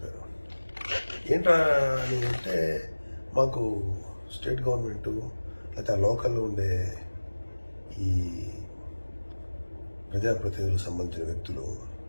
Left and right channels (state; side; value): inverted; both; correlation -1.00